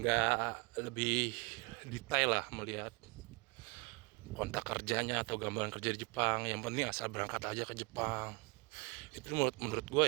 lebih detail lah melihat kontrak kerjanya atau gambaran kerja di Jepang. Yang penting asal berangkat aja ke Jepang. Itu menurut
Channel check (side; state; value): left; quieter; 29.4 dB